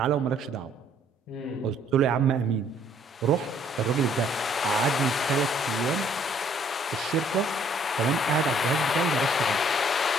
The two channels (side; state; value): both; normal; correlation 0.62